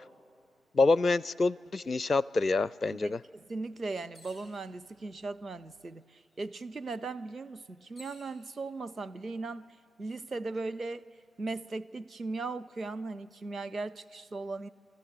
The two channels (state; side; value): normal; both; correlation 0.89